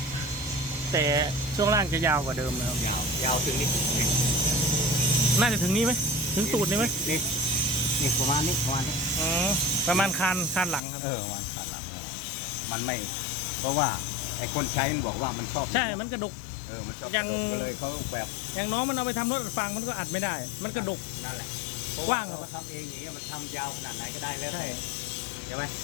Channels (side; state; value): right; drops out; at 10.8 s